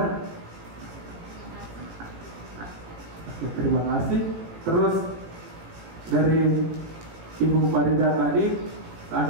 Oke, terima kasih. Terus dari Ibu Farida tadi, saya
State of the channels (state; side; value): late; left; 18 ms